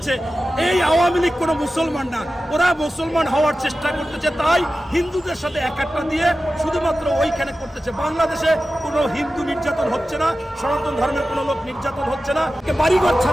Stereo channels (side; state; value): both; normal; correlation 0.94